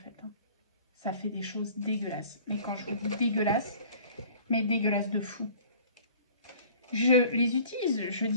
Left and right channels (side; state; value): both; inverted; correlation -0.49